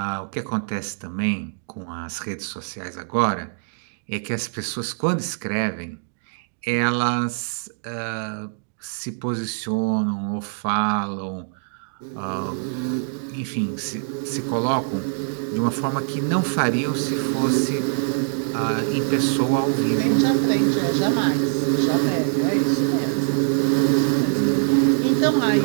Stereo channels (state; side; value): silent; left; 63 dB below the other